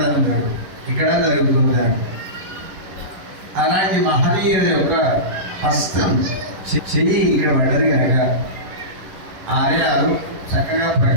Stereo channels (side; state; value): left; late; 11 ms